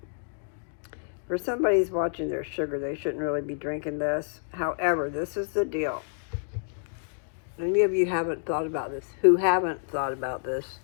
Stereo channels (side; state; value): right; silent; digital silence